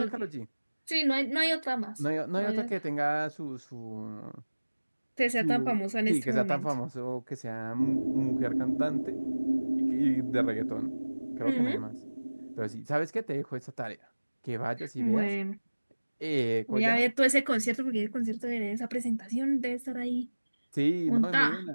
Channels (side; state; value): both; inverted; correlation -1.00